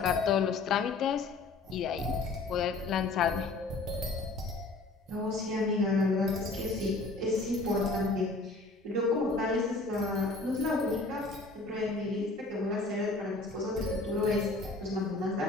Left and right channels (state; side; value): quieter; right; 3.4 dB